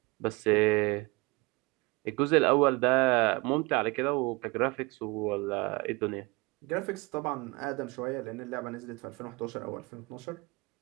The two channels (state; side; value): quieter; left; 25.8 dB